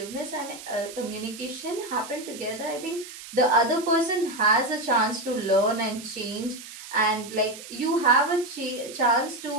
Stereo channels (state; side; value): noise; right; hiss, 14 dB below the sound